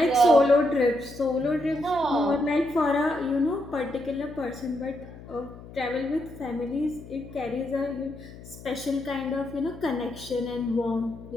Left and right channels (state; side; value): noise; left; hum, 16 dB below the sound